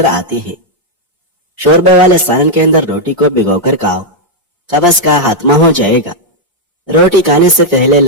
آتی ہے۔ شوربے والے سالن کے اندر روٹی کو بھگو کر کھاؤ، قبض کا خاتمہ ہو جائے گا۔ روٹی کھانے سے پہلے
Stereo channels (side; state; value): both; normal; correlation -0.01